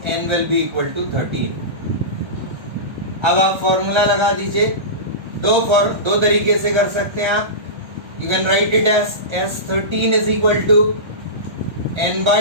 N will be equal to 13. अब आप फॉर्मूला लगा दीजिए. दो तरीके से कर सकते हैं आप. You can write it as S13 is equal to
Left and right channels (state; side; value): late; left; 1.3 ms